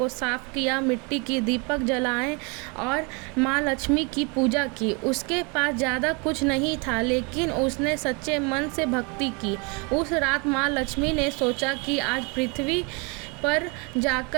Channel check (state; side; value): quieter; left; 31.5 dB